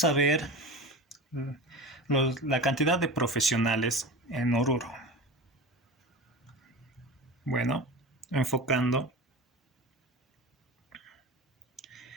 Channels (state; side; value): normal; both; correlation 0.30